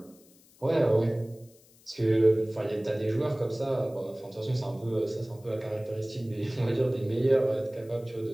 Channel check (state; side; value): noise; left; hiss, 28 dB below the sound